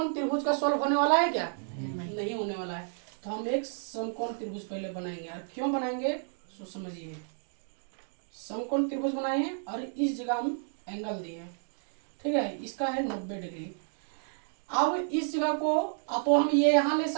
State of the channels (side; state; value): left; silent; digital silence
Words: त्रिभुज का सोल्व होने वाला है क्या, नहीं होने वाला है। तो हम एक समकोण त्रिभुज पहले बनाएंगे, और क्यों बनाएंगे सो समझिए। समकोण त्रिभुज बनाए और इस जगह हम एंगल दिए। ठीक है, इसका है 90 डिग्री। अब इस जगह को तो हम ये यहाँ ले